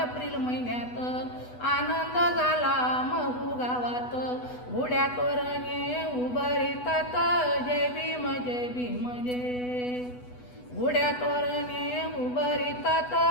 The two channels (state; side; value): late; right; 8.1 ms